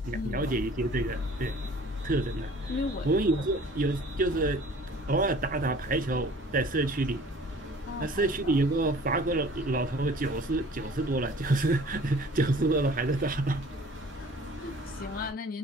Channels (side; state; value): both; normal; correlation 0.49